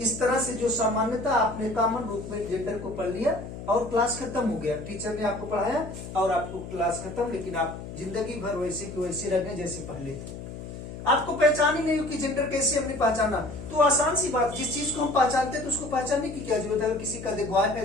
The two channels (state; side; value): noise; left; hum, 10 dB below the sound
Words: तरह से जो सामान्यता आपने कॉमन रूप में जेंडर को पढ़ लिया और क्लास खत्म हो गया। टीचर ने आपको पढ़ाया और आपको क्लास खत्म, लेकिन आप जिंदगी भर वैसे की वैसे रह गए जैसे पहले थे। आपको पहचान ही नहीं हो कि जेंडर कैसे हमने पहचाना। तो आसान सी बात, जिस चीज को हम पहचानते हैं तो उसको पहचानने की क्या जरूरत है। अगर किसी का बॉय